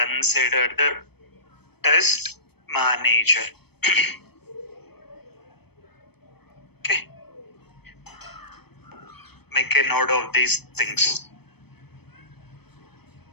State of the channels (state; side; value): late; right; 0.97 ms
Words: the test manager. Okay. Make a note of these things.